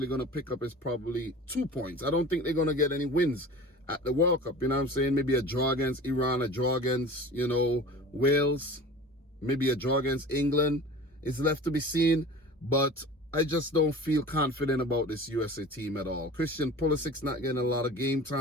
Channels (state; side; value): normal; both; correlation 0.39